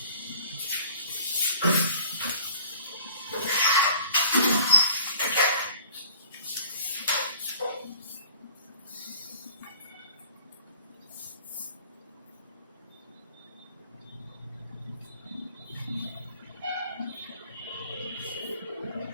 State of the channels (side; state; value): both; inverted; correlation -0.51